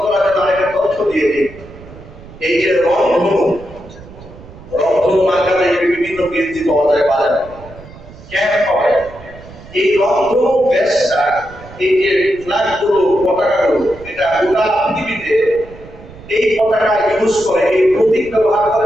করার জন্য আরেকটা তথ্য দিয়ে দিই। এই যে রংধনু মার্কাতে বিভিন্ন গেঞ্জি পাওয়া যায় বাজারে, ক্যাম্প পাওয়া যায়। এই রংধনু ব্যাসটা, এই যে ফ্ল্যাগগুলো, পতাকাগুলো, এটা গোটা পৃথিবীতে এই পতাকা ইউজ করে, এই প্রতীক ব্যবহার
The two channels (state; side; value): noise; right; rumble, 19 dB below the sound